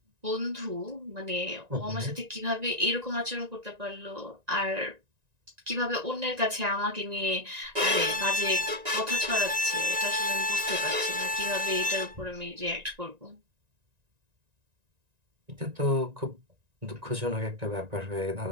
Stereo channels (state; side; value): late; left; 1.9 ms